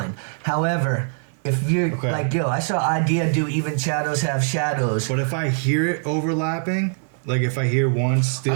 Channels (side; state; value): left; silent; digital silence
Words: However, if you're like, yo, I saw Idea do Even Shadows Have Shadows. But if I hear it overlapping, like if I hear one